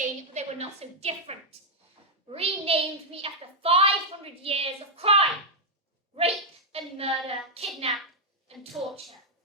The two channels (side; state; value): both; normal; correlation -0.01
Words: they were not so different. Renamed me after 500 years of crime. Rape and murder, kidnap and torture.